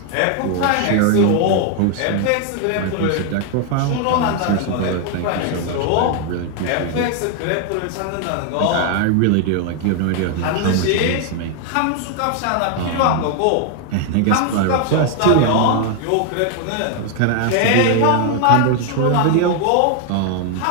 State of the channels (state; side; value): different; both; correlation 0.00